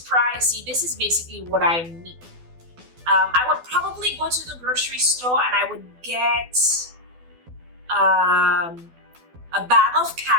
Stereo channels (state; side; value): late; left; 12 ms